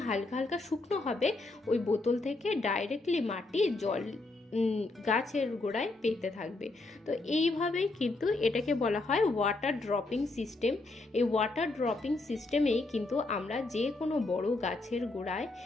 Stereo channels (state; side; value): quieter; right; 3.1 dB